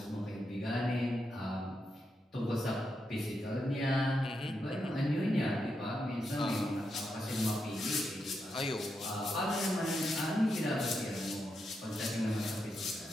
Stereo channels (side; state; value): both; normal; correlation 0.84